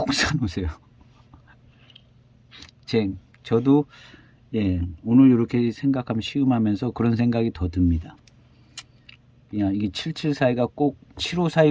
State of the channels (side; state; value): both; identical; correlation 1.00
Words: 사놓으세요. 저도 예, 오늘 이렇게 생각하면 시음하면서 그런 생각이 더 듭니다. 그냥 이게 7742가 꼭